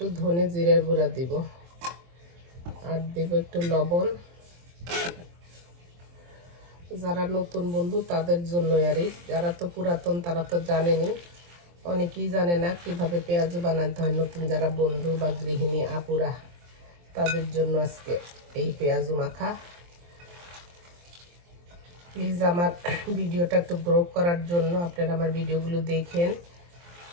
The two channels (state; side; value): late; left; 23 ms